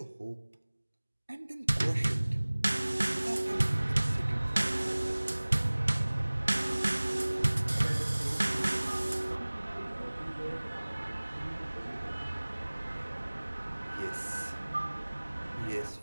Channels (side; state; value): both; inverted; correlation -1.00